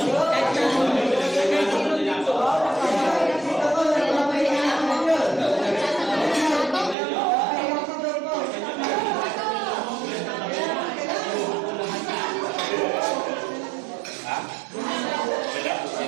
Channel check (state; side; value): drops out; left; at 7.0 s